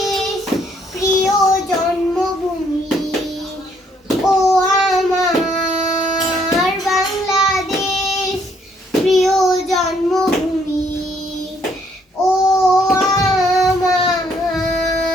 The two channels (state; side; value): normal; both; correlation 0.68